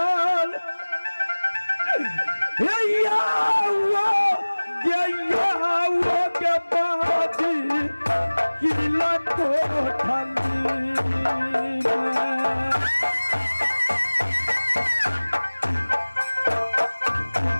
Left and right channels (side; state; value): both; inverted; correlation -1.00